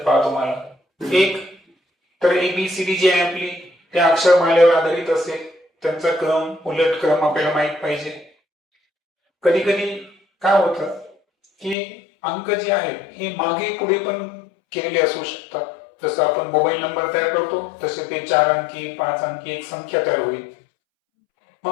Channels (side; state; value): right; drops out; at 11.8 s